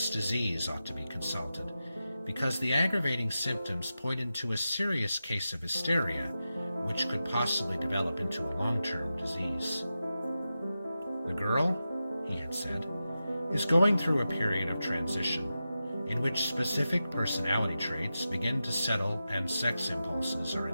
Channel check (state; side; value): inverted; both; correlation -0.92